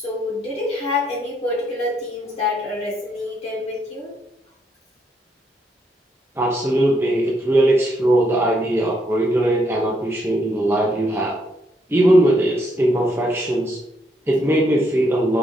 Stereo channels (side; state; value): both; normal; correlation 0.75